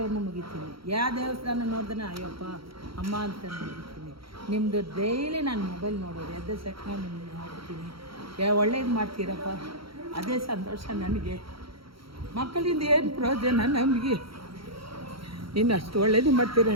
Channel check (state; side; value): late; left; 0.75 ms